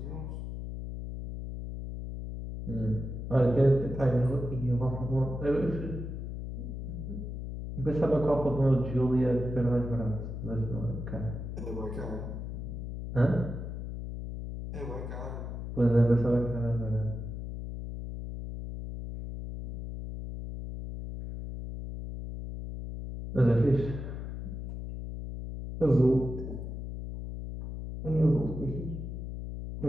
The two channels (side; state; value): left; noise; hum, 7 dB below the sound